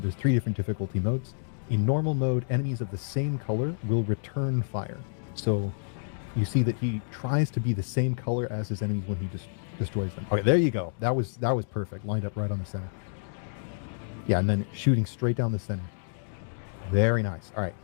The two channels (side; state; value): right; silent; digital silence